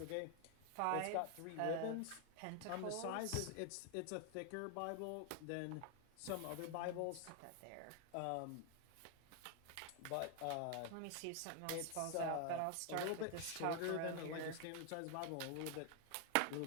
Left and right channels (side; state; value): both; different; correlation 0.00